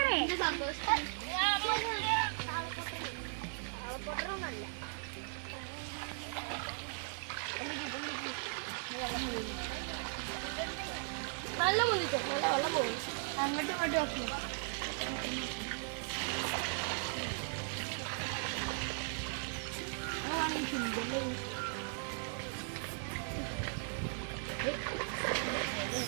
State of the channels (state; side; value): silent; left; 53 dB below the other